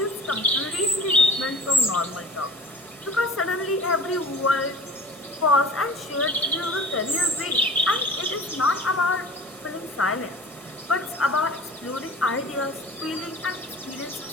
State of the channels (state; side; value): normal; both; correlation 0.41